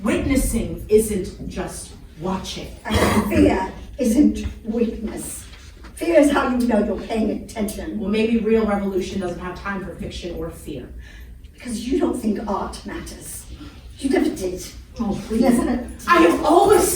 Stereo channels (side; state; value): both; identical; correlation 1.00